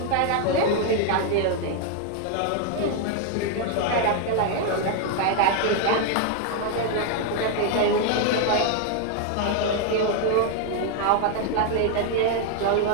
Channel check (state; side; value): different; both; correlation 0.00